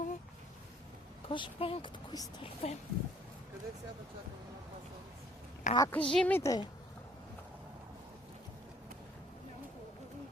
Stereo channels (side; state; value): both; normal; correlation 0.59